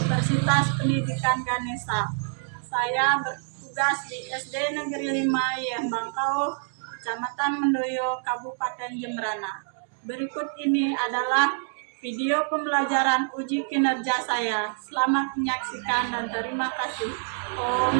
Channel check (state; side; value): silent; left; digital silence